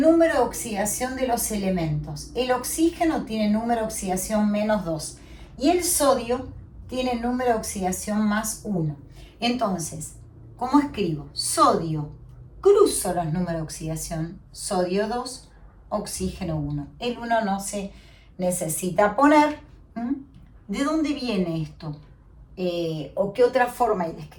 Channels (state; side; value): identical; both; correlation 1.00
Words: de oxidación de los elementos. El oxígeno tiene número de oxidación -2 y el sodio tiene número de oxidación +1. Entonces, ¿cómo escribo? Sodio, cruzo los números de oxidación, sodio 2, oxígeno 1. El 1 no se necesita poner. ¿De dónde viene esto? ¿O qué otra forma hay de